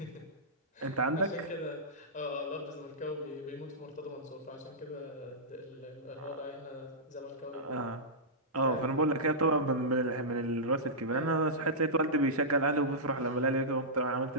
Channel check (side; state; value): both; normal; correlation -0.14